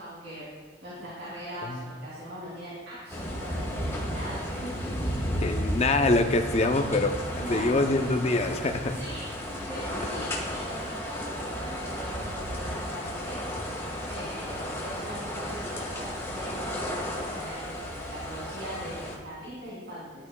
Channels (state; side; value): normal; both; correlation 0.45